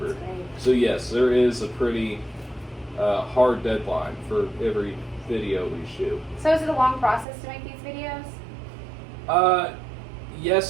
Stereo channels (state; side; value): drops out; left; at 7.2 s